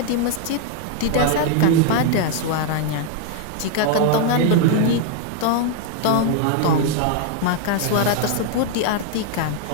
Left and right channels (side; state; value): both; different; correlation 0.00